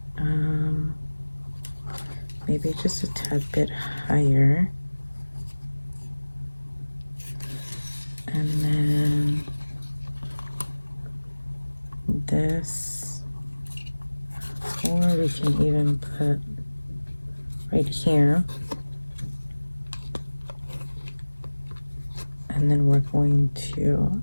Maybe just a tad bit higher. And then this, or we can even put right here. And then we're going to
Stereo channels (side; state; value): both; inverted; correlation -1.00